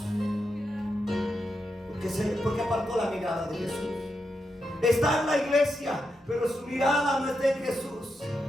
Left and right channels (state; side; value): normal; both; correlation 0.85